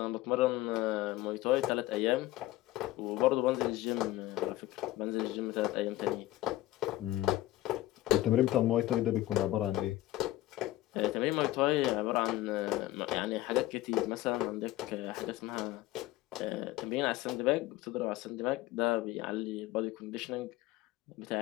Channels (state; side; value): quieter; right; 16.3 dB